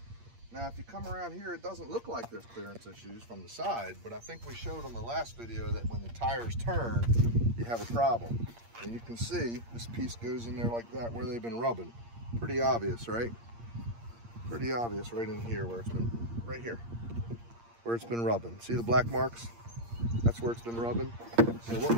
Now, if you come around here, it doesn't look like there's clearance issues from the side, but I think we showed on the last video that when the tires turn, you have a problem. And you can see this piece goes in there like that where they've been rubbing. Pretty obvious, right? Pretty obvious right in here where it's been, right here, where it's been rubbing. See the black marks? That's where it's been rubbing. So what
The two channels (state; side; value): late; left; 8.6 ms